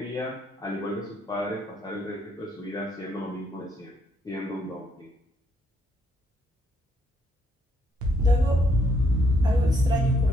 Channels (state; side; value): normal; both; correlation 0.72